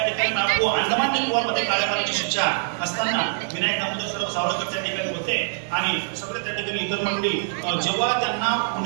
ठिकाणी अंदमान निकोबारमध्ये काळ्या पाण्याची शिक्षा असताना विनायक दामोदर सावरकर त्या ठिकाणी होते आणि सगळे त्या ठिकाणी इतर मंडळी. जेव्हा त्यांना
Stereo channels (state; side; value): silent; left; digital silence